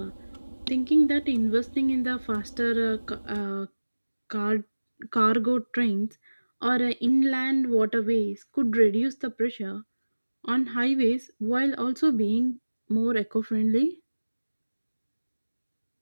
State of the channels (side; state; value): both; inverted; correlation -1.00